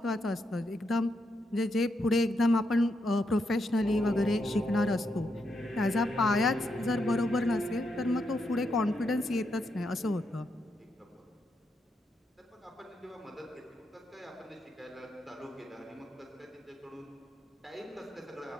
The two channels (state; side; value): normal; both; correlation 0.81